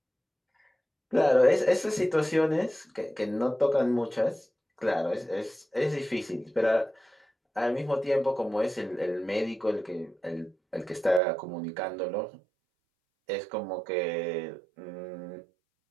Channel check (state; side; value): drops out; left; at 11.2 s